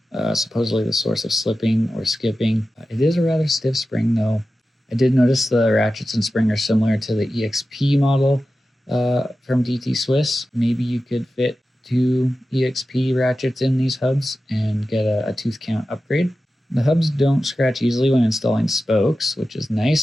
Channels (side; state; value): both; normal; correlation 0.93